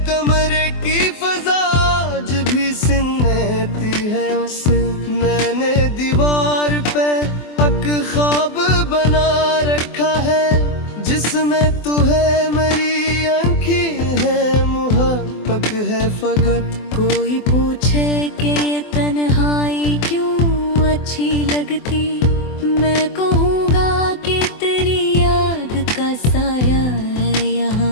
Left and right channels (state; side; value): late; right; 24 ms